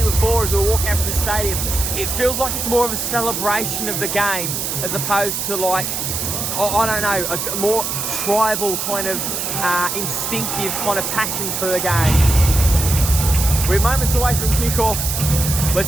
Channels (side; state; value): right; noise; hiss, 2 dB below the sound